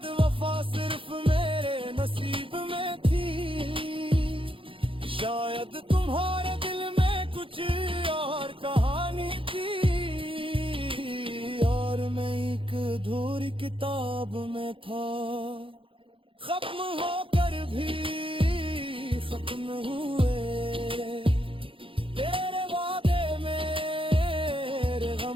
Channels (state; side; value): late; left; 0.26 ms